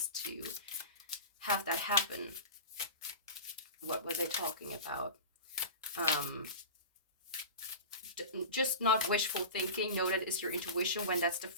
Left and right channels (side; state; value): both; inverted; correlation -0.30